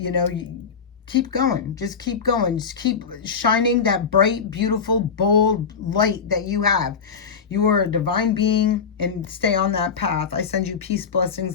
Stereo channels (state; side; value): quieter; right; 6.0 dB